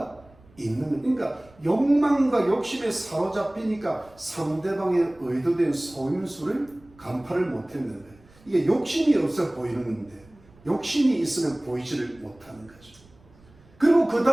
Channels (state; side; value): noise; right; rumble, 27 dB below the sound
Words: 있는 거예요. 그러니까 욕망과 욕심에 사로잡히니까 상대방의 의도된 속임수를 간파를 못했는 거예요. 이게 욕심이 없어 보이는 건데 욕심이 있으면 보이지를 못하는 거죠. 그리고 그